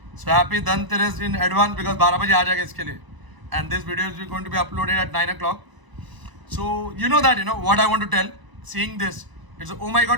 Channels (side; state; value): left; late; 1.0 ms